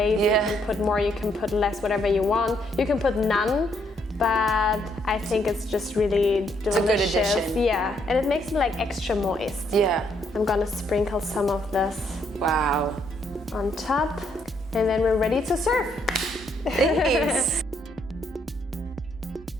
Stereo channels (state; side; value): normal; both; correlation 0.72